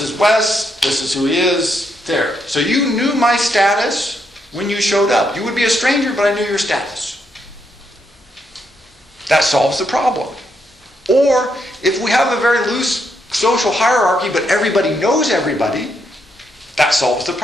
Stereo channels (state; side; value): normal; both; correlation 0.78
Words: is Wes, this is who he is, there. So you knew my status when you showed up. You would be a stranger, but I knew your status. That solves the problem. Or, if we have a very loose social hierarchy, but everybody knows everybody, that solves the